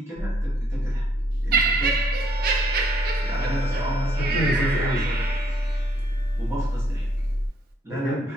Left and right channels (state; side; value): normal; both; correlation 0.68